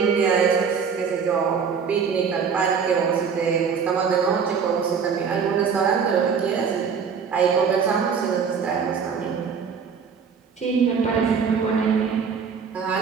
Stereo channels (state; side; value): quieter; left; 6.3 dB